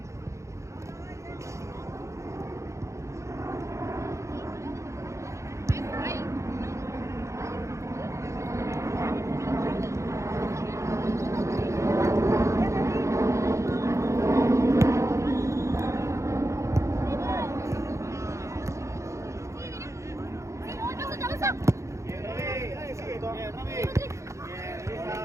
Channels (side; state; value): left; late; 0.14 ms